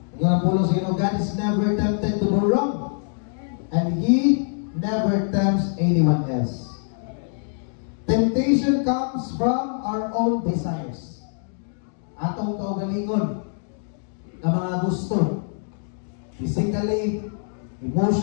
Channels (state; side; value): silent; right; digital silence